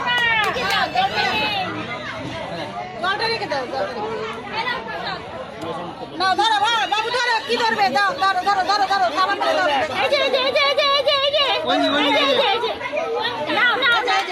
না ধরো বাবু ধরো, কি ধরবে? দাও ধরো ধরো ধরো ধরো, খাবার ধরো। এই যে এই যে এই যে এই যে এই যে এই যে এই যে নাও নাও, এই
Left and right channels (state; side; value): identical; both; correlation 1.00